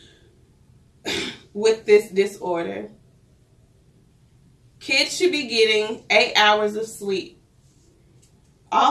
with this disorder. Kids should be getting 8 hours of sleep.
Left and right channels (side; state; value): both; identical; correlation 1.00